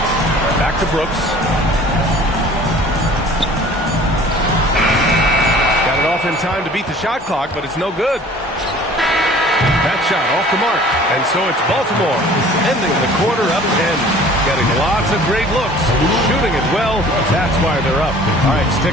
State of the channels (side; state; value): both; normal; correlation 0.48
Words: Back to Brooks. Got it off in time to beat the shot clock, but it's no good. That shot off the mark. And so it's Baltimore ending the quarter up 10. Getting lots of great looks. Shooting it well. That's why they're up. All right,